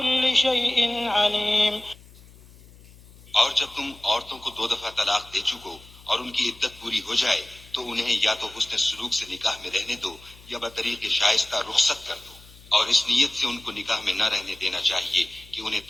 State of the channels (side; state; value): left; noise; hum, 23 dB below the sound